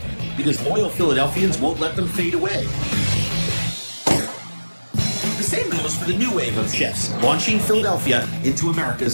because loyal Philadelphians won't let them fade away. The same goes for the new wave of chefs launching Philadelphia into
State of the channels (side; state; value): both; inverted; correlation -1.00